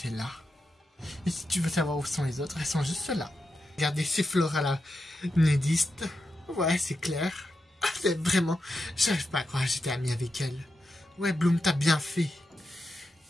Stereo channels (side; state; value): both; normal; correlation 0.88